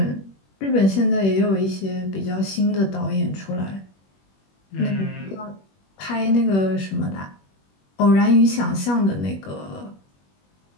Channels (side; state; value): right; late; 21 ms